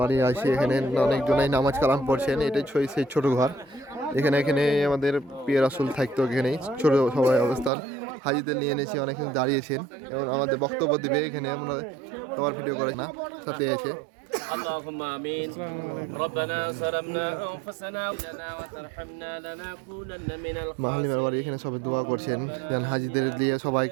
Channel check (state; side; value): drops out; left; at 7.7 s